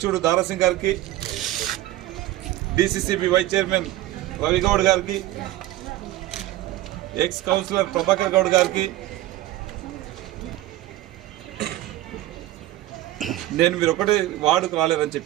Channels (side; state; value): left; quieter; 15.5 dB